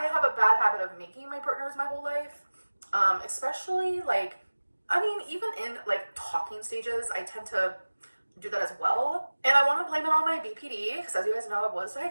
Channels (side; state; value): both; inverted; correlation -1.00